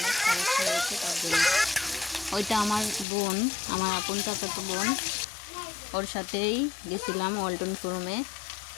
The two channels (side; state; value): right; drops out; at 3.1 s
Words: সমস্যা হয়েছে, তার জন্য ওইটা আমার বোন, আমার আপন চাচাতো বোন, ওর সাথেই গেছিলাম ওয়ালটন শোরুমে।